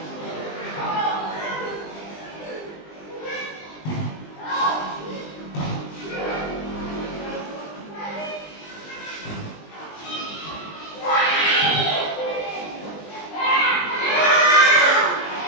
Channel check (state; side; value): late; right; 20 ms